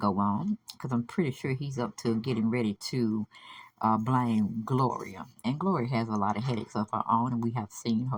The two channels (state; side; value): identical; both; correlation 1.00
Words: on, because I'm pretty sure he's up to getting ready to blame Gloria, and Gloria has a lot of headaches of her own, and we have seen